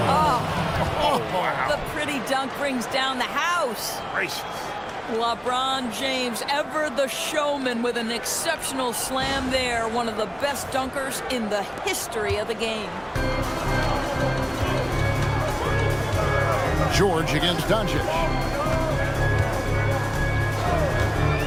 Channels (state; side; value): identical; both; correlation 1.00